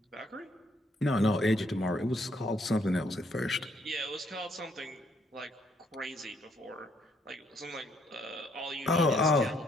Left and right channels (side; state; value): both; normal; correlation 0.70